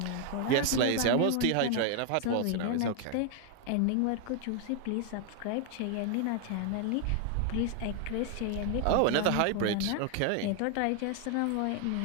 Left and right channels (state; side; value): different; both; correlation 0.00